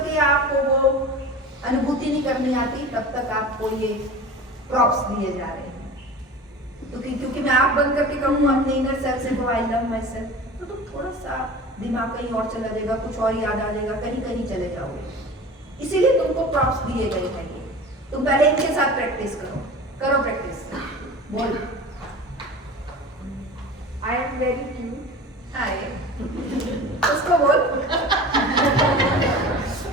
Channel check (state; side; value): normal; both; correlation 0.36